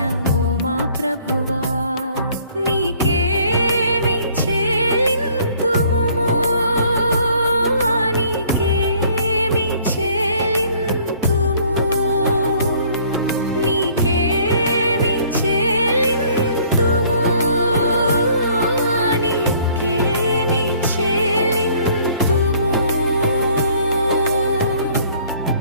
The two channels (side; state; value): both; inverted; correlation -0.58